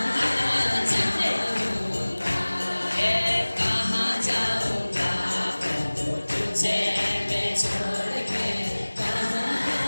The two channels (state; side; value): inverted; both; correlation -1.00